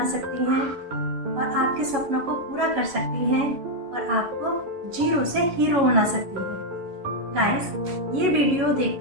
सकती हैं और आपके सपनों को पूरा कर सकती हैं और आपको जीरो से हीरो बना सकती हैं। गाइस, ये वीडियो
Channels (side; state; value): left; late; 11 ms